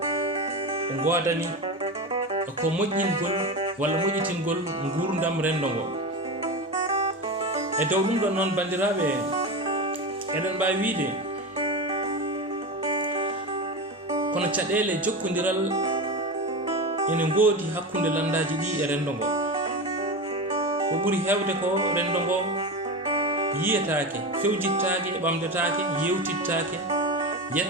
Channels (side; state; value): both; normal; correlation 0.22